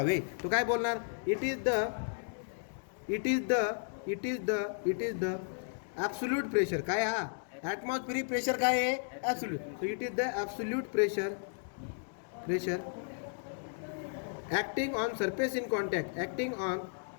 तो काय बोलणार, it is the absolute pressure. काय हा ॲटमॉस्फेरिक प्रेशर काय आहे, absolute. So it is the absolute pressure acting on surface in contact, acting on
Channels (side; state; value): right; silent; digital silence